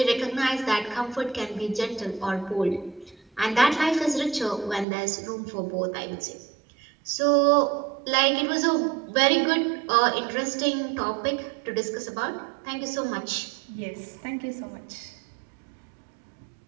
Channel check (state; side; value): drops out; left; at 4.9 s